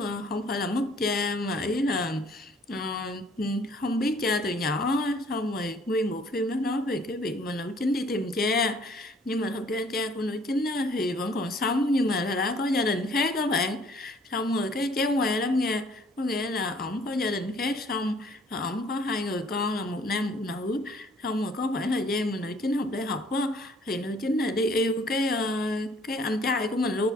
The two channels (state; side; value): normal; both; correlation 0.58